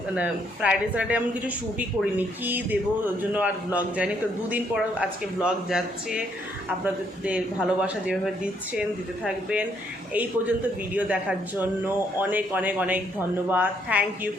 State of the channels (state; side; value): normal; both; correlation 0.71